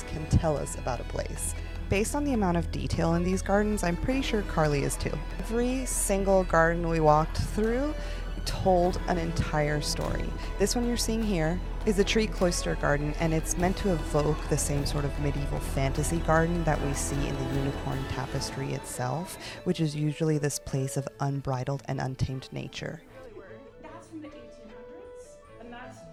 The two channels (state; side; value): identical; both; correlation 1.00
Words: can tell us about a place. Based on the amount of detail in these gardens, I'm pretty sure Carly is too. Every single garden we walked through told an entire story. This one you're seeing here is the Tree Cloister Garden, and it's meant to evoke the same sort of medieval fantasy garden that we see in the Unicorn Tapestry itself, which is usually this place of unbridled and untamed nature. That's from the 1800s, and that's